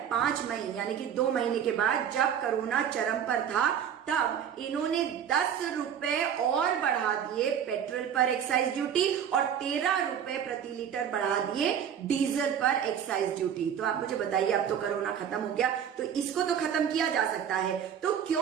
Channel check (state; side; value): quieter; left; 8.7 dB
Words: 5 मई यानी कि 2 महीने के बाद जब कोरोना चरम पर था, तब इन्होंने 10 रुपए और बढ़ा दिए पेट्रोल पर एक्साइज ड्यूटी, और 13 रुपए प्रति लीटर बढ़ा दिए डीजल पर एक्साइज ड्यूटी। तो आप मुझे बताइए, अब तो कोरोना खत्म हो गया, तो इसको तो खत्म किया जा सकता है, तो